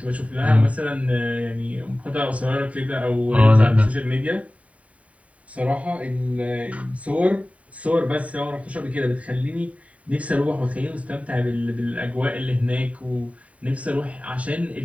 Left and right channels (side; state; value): left; late; 0.067 ms